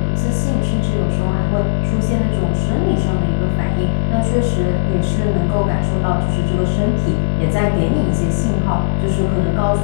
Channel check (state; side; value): silent; right; digital silence